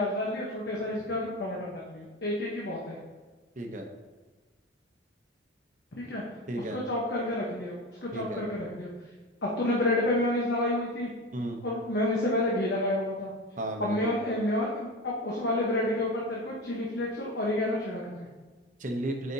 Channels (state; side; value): normal; both; correlation 0.26